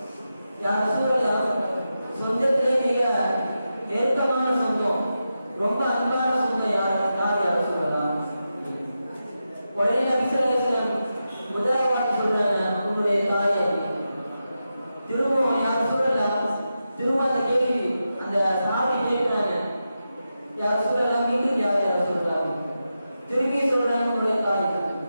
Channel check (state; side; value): inverted; both; correlation -0.89